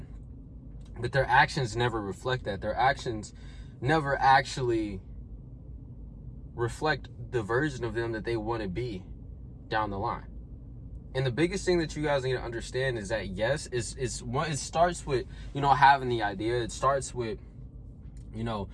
But their actions never reflect that. Their actions never actually reflect the version of them that they want to be down the line. And the biggest thing that you guys need to understand is that, yes, it starts with, having the idea. It starts with,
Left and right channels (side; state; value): both; identical; correlation 1.00